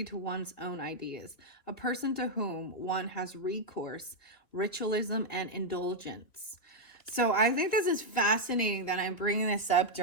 to one's own ideas, a person to whom one has recourse, ritualism, and indulgence. So I think this is fascinating that I'm bringing this up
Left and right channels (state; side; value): late; right; 3.3 ms